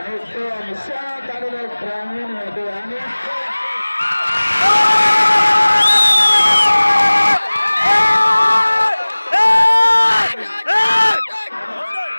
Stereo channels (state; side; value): inverted; both; correlation -1.00